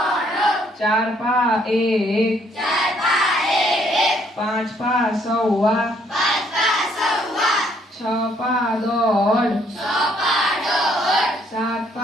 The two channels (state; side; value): normal; both; correlation 0.67